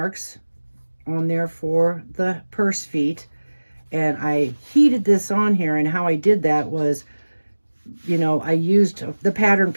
on there for the purse feet, and I heated this on here. And how I did that was, you know, I used the pattern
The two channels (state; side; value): inverted; both; correlation -1.00